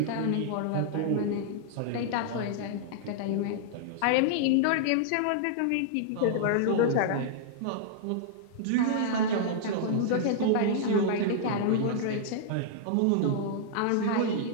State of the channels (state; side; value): different; both; correlation -0.01